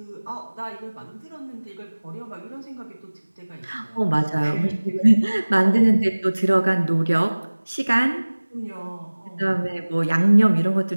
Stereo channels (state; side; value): inverted; both; correlation -1.00